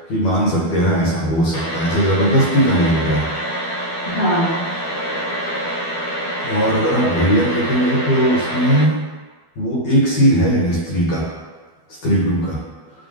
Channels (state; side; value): late; right; 12 ms